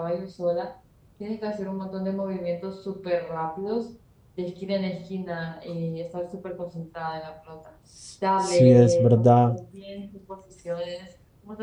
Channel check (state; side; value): identical; both; correlation 1.00